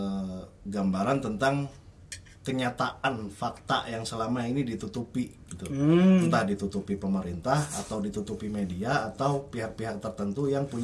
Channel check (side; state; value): both; identical; correlation 1.00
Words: gambaran tentang kenyataan fakta yang selama ini ditutupi gitu. Entah ditutupi pemerintah atau ditutupi media atau pihak-pihak tertentu yang